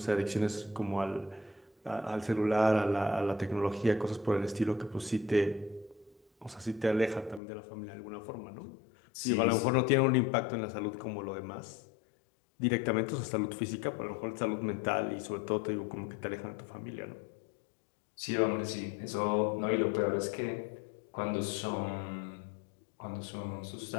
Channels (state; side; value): drops out; right; at 7.4 s